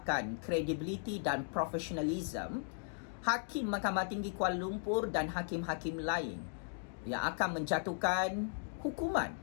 kredibiliti dan profesionalism Hakim Mahkamah Tinggi Kuala Lumpur dan hakim-hakim lain yang akan menjatuhkan hukuman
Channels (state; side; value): silent; right; digital silence